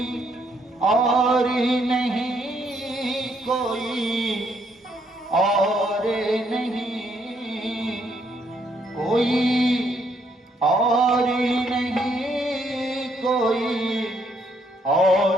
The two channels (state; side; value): normal; both; correlation 0.71